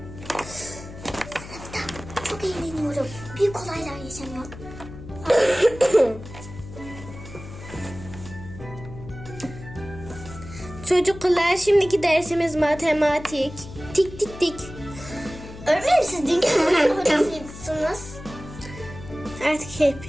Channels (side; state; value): left; noise; hum, 14 dB below the sound